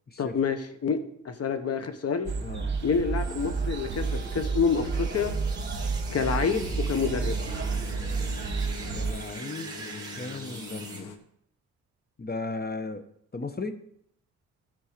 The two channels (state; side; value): normal; both; correlation 0.35